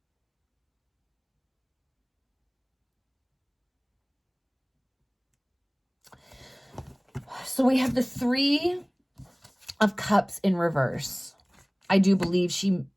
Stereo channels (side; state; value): both; identical; correlation 1.00